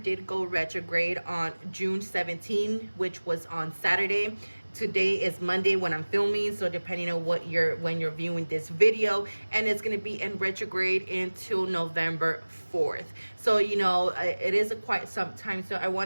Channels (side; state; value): both; inverted; correlation -1.00